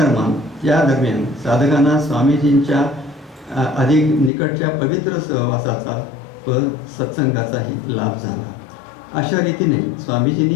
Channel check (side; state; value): right; drops out; at 4.3 s